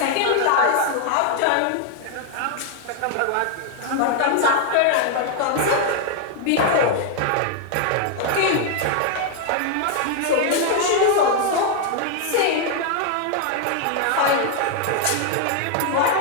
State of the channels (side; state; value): both; different; correlation 0.00